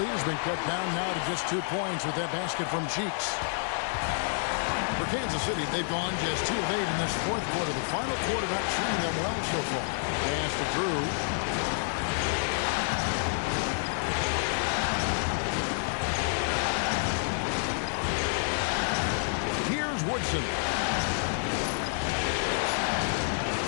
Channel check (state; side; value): silent; right; 59 dB below the other